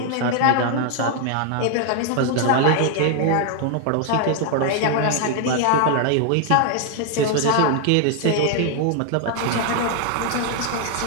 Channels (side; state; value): both; different; correlation 0.00